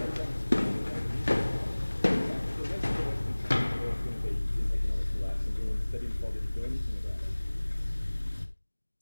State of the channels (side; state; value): both; inverted; correlation -1.00